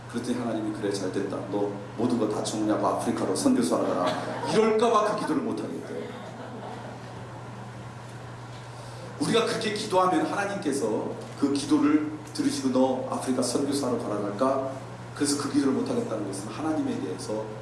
그랬더니 하나님이 그래 잘됐다, 너 모든 거 다 정리하고 아프리카로 선교사 하라, 이럴까봐 그 기도를 못하겠대요. 우리가 그렇게 기도하면 하나님께서 그 기도를 들으시고 너 아프리카 선교사로 가라 할까? 그래서 그 기도를 못하겠다는 것은 하나님에 대해서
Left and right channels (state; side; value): identical; both; correlation 1.00